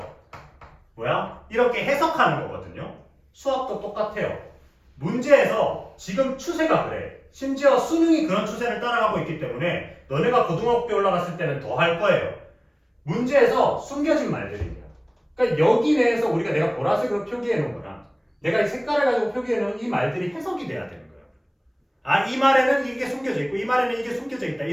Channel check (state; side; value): identical; both; correlation 1.00